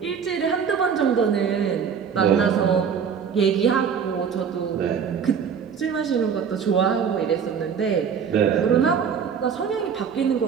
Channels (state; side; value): quieter; left; 7.0 dB